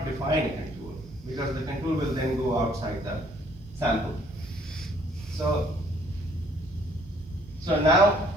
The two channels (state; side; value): normal; both; correlation 0.62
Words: define a contour, because the contour will then go outside the sample. So now